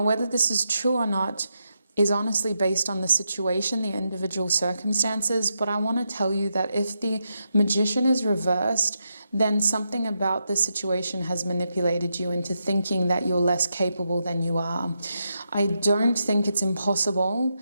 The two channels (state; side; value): inverted; both; correlation -0.84